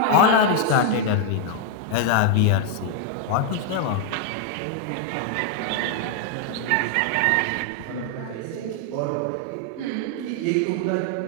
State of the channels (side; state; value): both; different; correlation 0.00